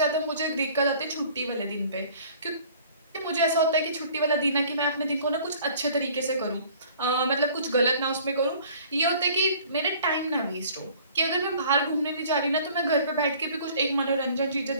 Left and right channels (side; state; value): both; inverted; correlation -0.52